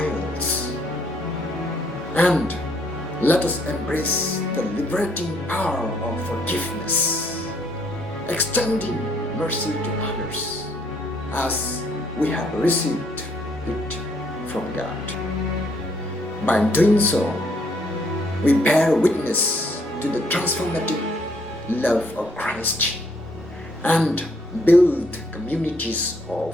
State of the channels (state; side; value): normal; both; correlation 0.68